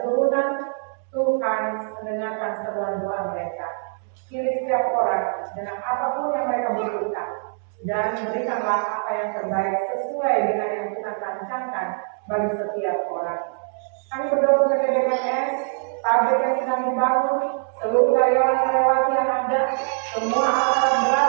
Tuhan mendengarkan seruan doa mereka. Pilih setiap orang dengan apapun yang mereka butuhkan dan berikanlah apa yang terbaik sesuai dengan yang Tuhan rancangkan bagi setiap orang. Kami berdoa untuk BKS, pabrik yang sedang dibangun, seluruh karyawan-karyawati yang ada, semua alat-alat berat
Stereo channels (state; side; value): silent; left; digital silence